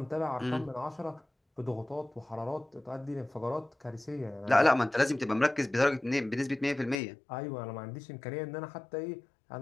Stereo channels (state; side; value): drops out; right; at 7.0 s